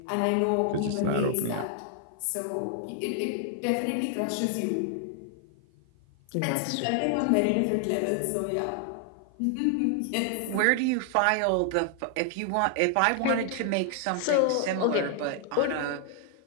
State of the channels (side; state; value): both; different; correlation 0.00